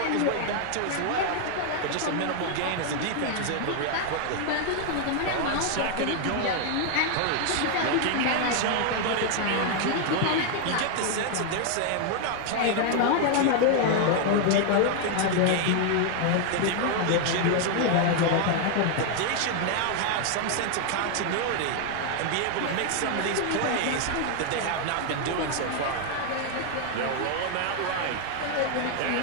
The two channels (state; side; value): different; both; correlation 0.00